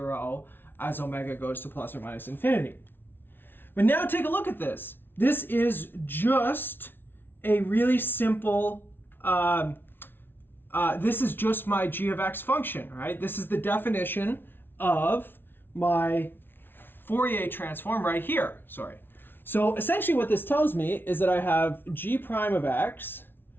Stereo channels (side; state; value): right; late; 0.10 ms